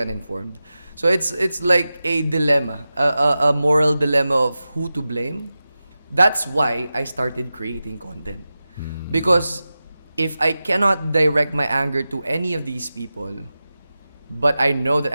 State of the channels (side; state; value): both; inverted; correlation -0.94